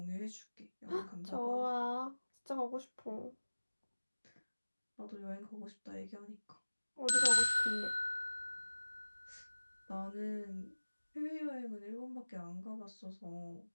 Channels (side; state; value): both; inverted; correlation -1.00